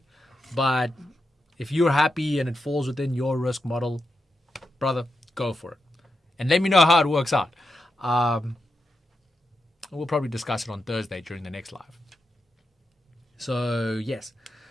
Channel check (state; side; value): normal; both; correlation 0.88